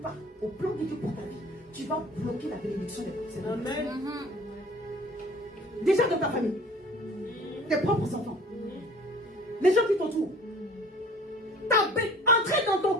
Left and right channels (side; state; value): both; normal; correlation 0.48